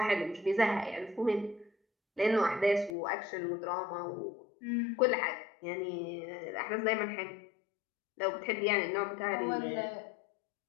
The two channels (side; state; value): right; drops out; at 3.0 s